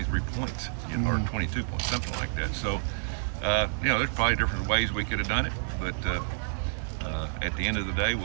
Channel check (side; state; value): left; silent; 59 dB below the other